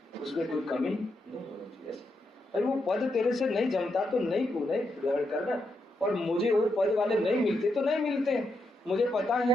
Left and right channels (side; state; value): both; normal; correlation 0.82